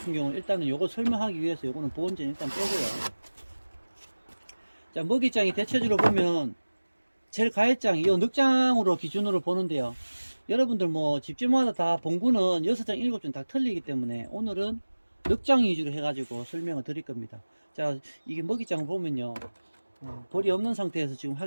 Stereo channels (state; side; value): inverted; both; correlation -1.00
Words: 경우는 일단은 요거 설명하기 위해서 요거는 보온전 일단 빼고요. 자, 먹이장이 대체적으로 보면 제일 가해장, 이 늑장으로 기준으로 보는데요. 여러분들 뭐 집집마다 다 봉구는 6장, 7장 다 틀리기 때문에 오늘은 늑장 위주로 해가지고 설명을 드릴 겁니다. 자, 이게 먹이장을 보면요. 벌이 없는 상태에서 지금